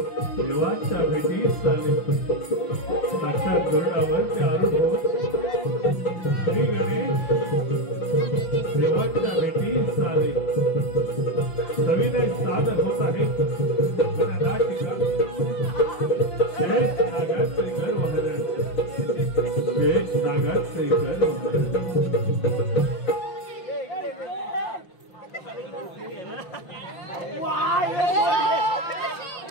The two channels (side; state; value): right; late; 5.8 ms